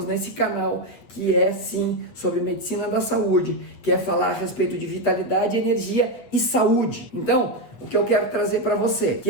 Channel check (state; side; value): late; right; 8.5 ms